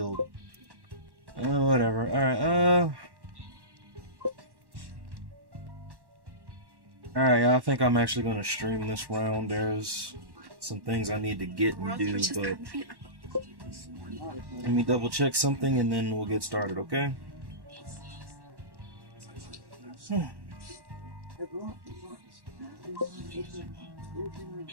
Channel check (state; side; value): late; left; 1.1 ms